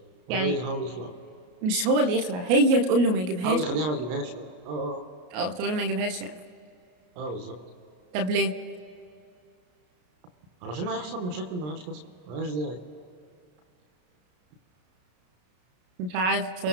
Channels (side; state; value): left; late; 33 ms